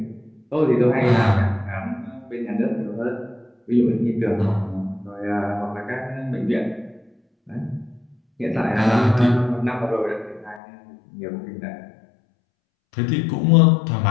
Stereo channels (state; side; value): drops out; right; at 10.6 s